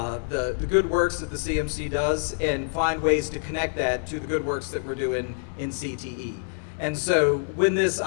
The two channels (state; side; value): silent; right; digital silence